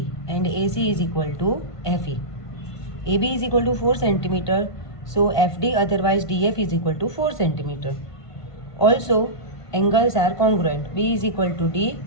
and AC is equal to FE. AB is equal to 4 cm, so FD otherwise DF is equal to 4 cm. Also angles are congruent, B is equal to D,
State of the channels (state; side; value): late; right; 1.5 ms